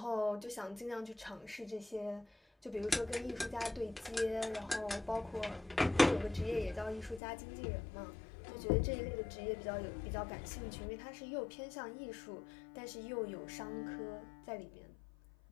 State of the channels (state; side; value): drops out; right; at 7.2 s